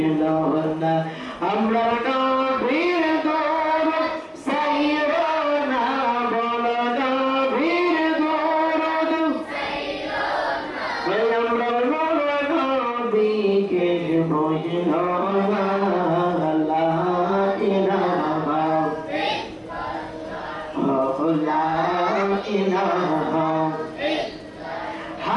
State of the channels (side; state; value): both; identical; correlation 1.00